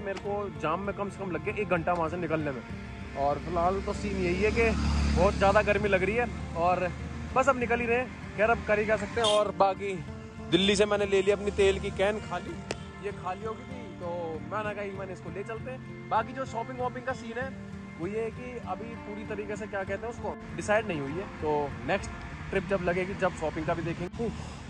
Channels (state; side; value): identical; both; correlation 1.00